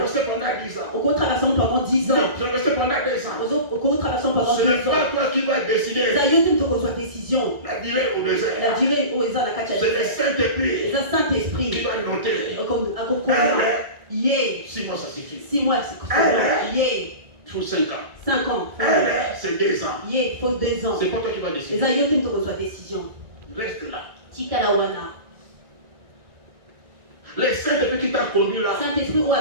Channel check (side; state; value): left; late; 1.9 ms